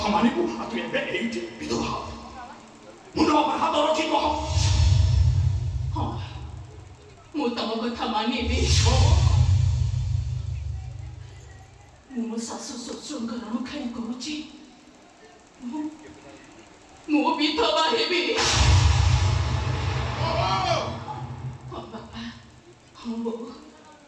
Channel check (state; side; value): identical; both; correlation 1.00